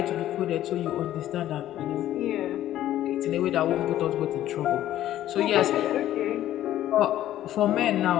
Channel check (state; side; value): quieter; right; 12.9 dB